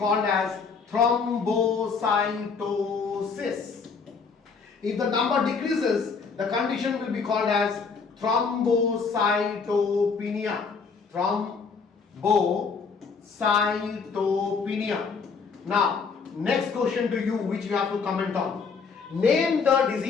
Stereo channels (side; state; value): right; quieter; 5.2 dB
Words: as thrombocytosis. If the number decreases, the condition will be called as thrombocytopenia. Thrombocytopenia. Now, next question to you, which you have to comment on. Name the